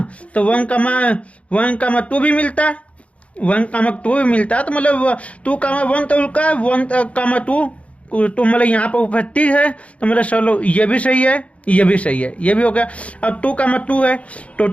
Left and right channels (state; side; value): late; right; 0.064 ms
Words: तो 1, 2 भी मिलता, 1, 2 भी मिलता, तो मतलब 2, 1 तो उनका 1, 2 तो मतलब यहाँ पर उपस्थित है, तो मतलब चलो ये भी सही है, ये भी सही है, ये भी हो गया। अब 2, 2 है, तो